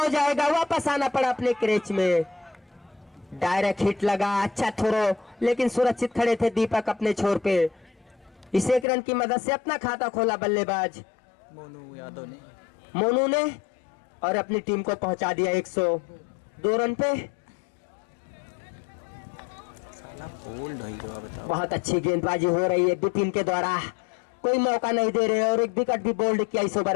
जाएगा, वापस आना पड़ा अपने क्रेच में। डायरेक्ट हिट लगा, अच्छा थ्रो, लेकिन सुरक्षित खड़े थे दीपक अपने छोर पे। इस 1 रन की मदद से अपना खाता खोला बल्लेबाज मोनू यादव ने। मोनू ने, और अपनी टीम को पहुंचा दिया 102 रन पे। साला बोल्ड हो गया, बताओ। बहुत अच्छी गेंदबाजी हो रही है विपिन के द्वारा, कोई मौका नहीं दे रहे, और 1 विकेट भी बोल्ड किया इस ओवर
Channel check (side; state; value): right; drops out; at 8.8 s